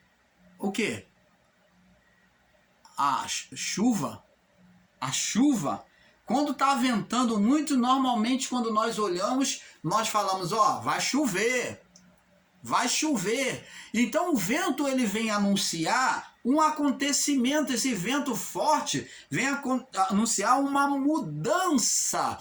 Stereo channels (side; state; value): both; identical; correlation 1.00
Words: o quê? A chuva. A chuva. Quando está ventando muito, normalmente quando nós olhamos, nós falamos, ó, vai chover. Vai chover. Então o vento ele vem anunciar um acontecimento, esse vento forte vem anunciar uma mudança.